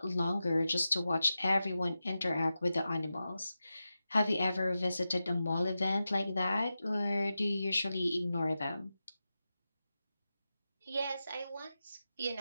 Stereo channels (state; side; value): inverted; both; correlation -0.92